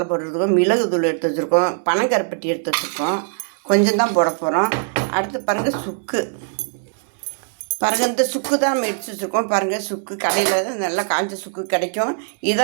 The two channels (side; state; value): left; silent; 65 dB below the other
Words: பவுடர் எடுத்துருக்கோம், மிளகு தூள் எடுத்து வச்சுருக்கோம், பனங்கருப்பட்டி எடுத்து வச்சுருக்கோம். கொஞ்சம் தான் போட போகிறோம். அடுத்து பாருங்கள், சுக்கு. பாருங்கள், இந்த சுக்கு தான் நம்ம எடுத்து வச்சுருக்கோம். பாருங்கள், சுக்கு கடையில் நல்லா காஞ்ச சுக்கு கிடைக்கும்.